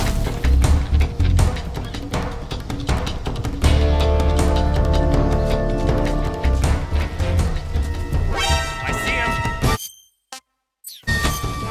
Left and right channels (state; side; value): identical; both; correlation 1.00